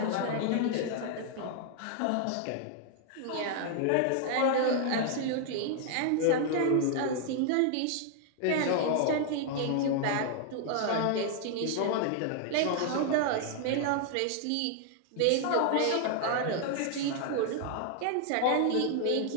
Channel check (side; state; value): both; different; correlation 0.00